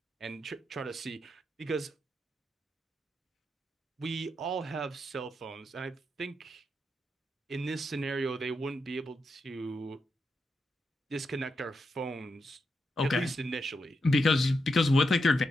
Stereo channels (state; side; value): normal; both; correlation 0.85